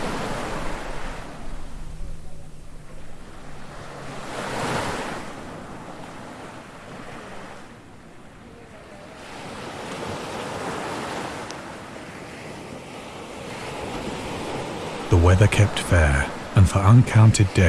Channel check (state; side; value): identical; both; correlation 1.00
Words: The weather kept fair, and for uncounted